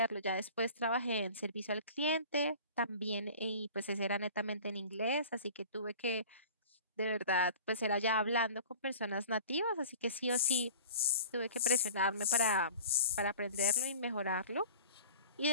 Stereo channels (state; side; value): inverted; both; correlation -0.42